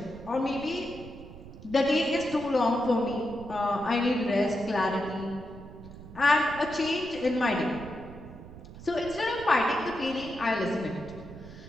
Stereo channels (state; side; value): noise; right; rumble, 16 dB below the sound